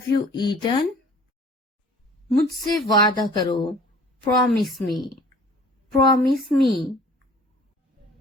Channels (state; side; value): normal; both; correlation 0.50